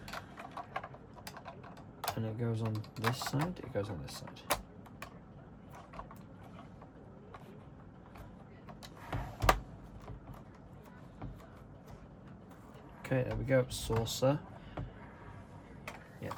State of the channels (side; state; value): both; identical; correlation 1.00